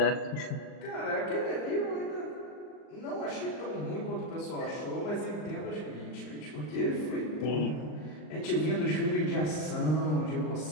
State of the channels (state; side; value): late; right; 39 ms